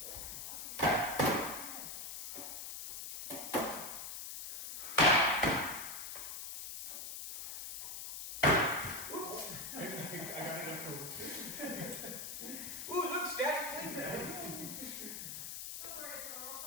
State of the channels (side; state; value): left; noise; hiss, 7 dB below the sound